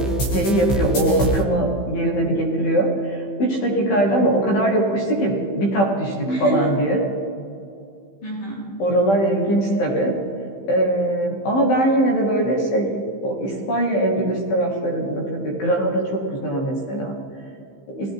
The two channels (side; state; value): right; late; 15 ms